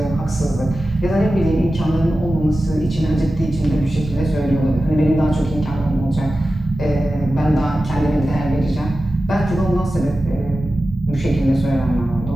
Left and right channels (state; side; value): normal; both; correlation 0.94